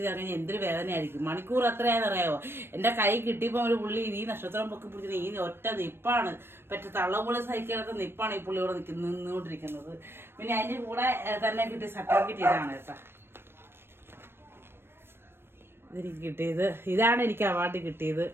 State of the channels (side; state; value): left; late; 0.11 ms